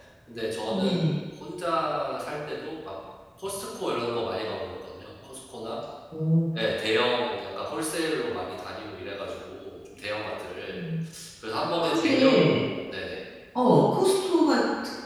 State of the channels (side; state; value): both; identical; correlation 1.00